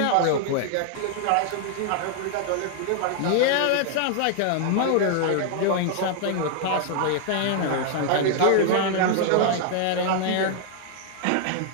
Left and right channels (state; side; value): different; both; correlation 0.00